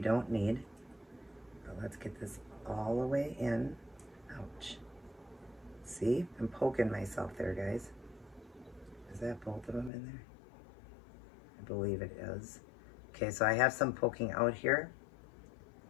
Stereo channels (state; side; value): drops out; right; at 9.9 s